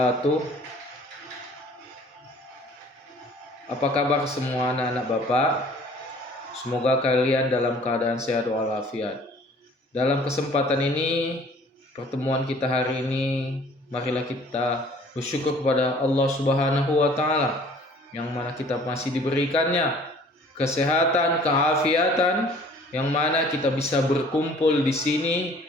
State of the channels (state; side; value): normal; both; correlation 0.53